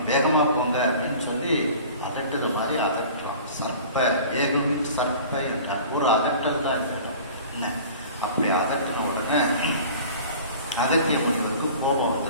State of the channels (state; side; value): inverted; both; correlation -0.43